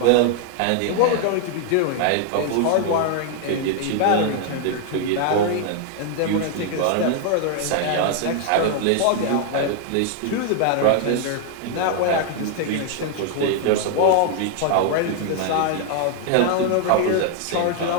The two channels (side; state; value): both; different; correlation 0.00